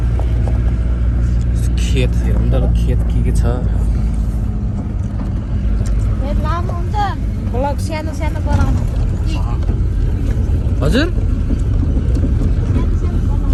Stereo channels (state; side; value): identical; both; correlation 1.00